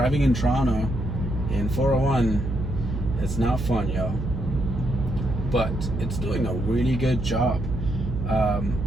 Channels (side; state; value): right; noise; hum, 5 dB below the sound